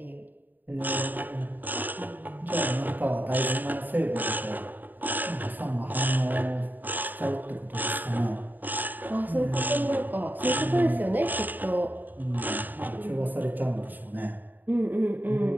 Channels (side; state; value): left; late; 0.088 ms